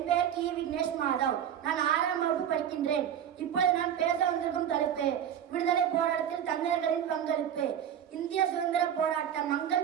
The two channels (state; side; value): quieter; left; 9.5 dB